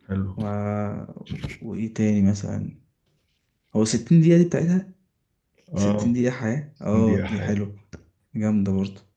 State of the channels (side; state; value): both; identical; correlation 1.00